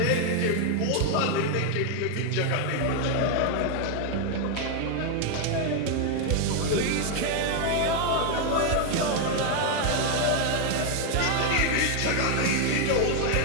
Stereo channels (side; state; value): both; different; correlation 0.01